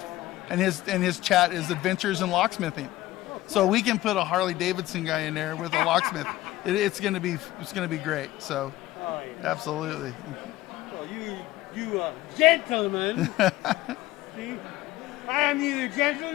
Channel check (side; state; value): right; quieter; 16.5 dB